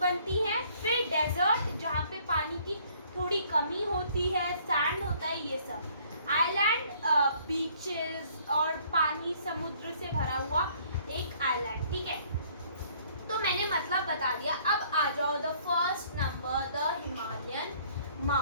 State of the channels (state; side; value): inverted; both; correlation -0.60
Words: हैं, फिर डेजर्ट जहाँ पे पानी की थोड़ी कमी होती है, सैंड होता है, ये सब। आइलैंड बीचेस और पानी समुद्र से भरा हुआ एक आइलैंड, ठीक है। तो मैंने मतलब बता दिया। अब आ जाओ the first number, the Himalayan